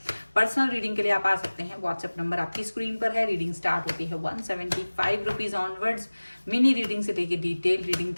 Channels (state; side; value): inverted; both; correlation -1.00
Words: पर्सनल रीडिंग के लिए आप आ सकते हैं, व्हाट्सएप नंबर आपकी स्क्रीन पर है। रीडिंग स्टार्ट होती है 175 रुपीज ऑनवर्ड्स। मिनी रीडिंग से लेकर डिटेल रीडिंग